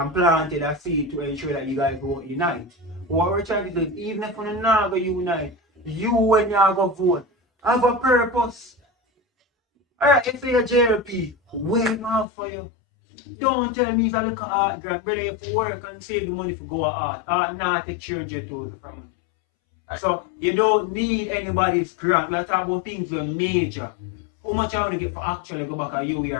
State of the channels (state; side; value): drops out; right; at 12.2 s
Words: planted a seed to ensure that you guys won't unite. What we're trying to do is, even if you're not going to unite, you when you're going to vote, have a purpose. Alright, if you're a JLP, wait out for you. Don't tell me if I look at art grant, brother, you have to work and save the money for go at art. Art now take 300,000 from you. So you don't need anybody's grant. Let's talk about things that are major. How much I want to get for actually go back at you